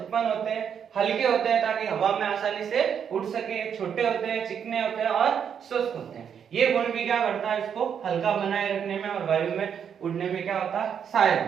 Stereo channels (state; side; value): quieter; left; 7.8 dB